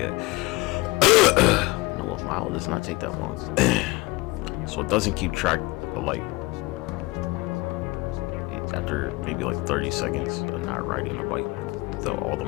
No, a mile does not take that long. So it doesn't keep track of like, after maybe like 30 seconds of not riding a bike, all the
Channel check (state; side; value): quieter; right; 22.6 dB